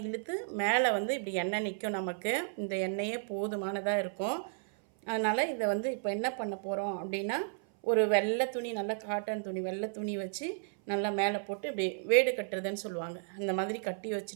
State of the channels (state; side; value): silent; left; 56 dB below the other